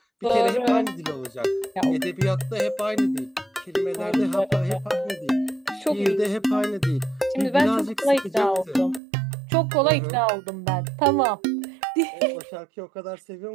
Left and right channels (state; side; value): drops out; left; at 9.0 s